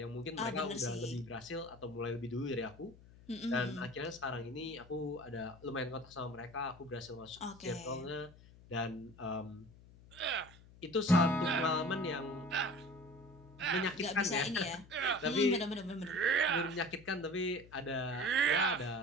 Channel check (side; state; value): left; noise; hum, 22 dB below the sound